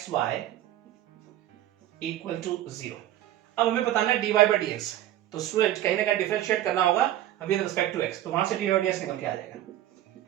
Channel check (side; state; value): left; quieter; 13.2 dB